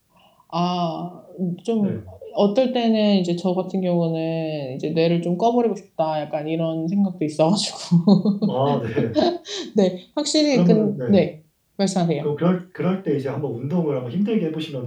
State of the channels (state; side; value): identical; both; correlation 1.00